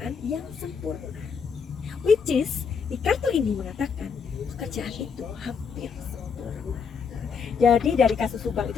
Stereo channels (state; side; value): quieter; right; 6.1 dB